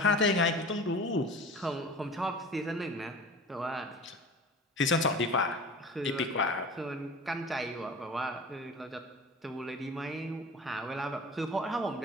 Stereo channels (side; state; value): both; normal; correlation 0.38